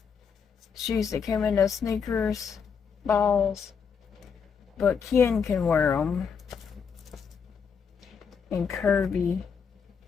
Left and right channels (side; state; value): right; quieter; 6.4 dB